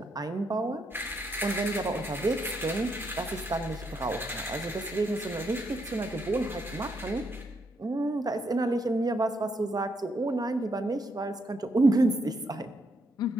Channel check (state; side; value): normal; both; correlation 0.77